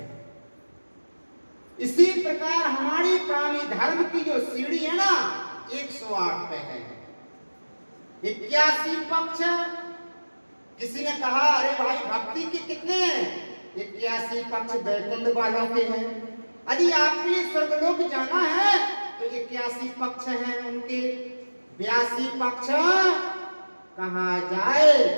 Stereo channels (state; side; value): inverted; both; correlation -1.00